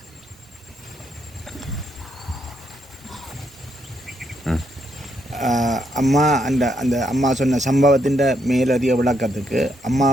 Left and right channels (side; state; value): both; normal; correlation 0.77